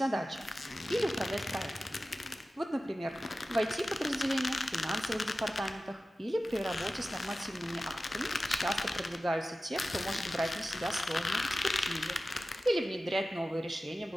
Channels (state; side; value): normal; both; correlation 0.95